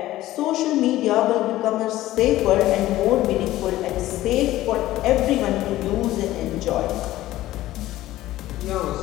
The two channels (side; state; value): right; quieter; 15.5 dB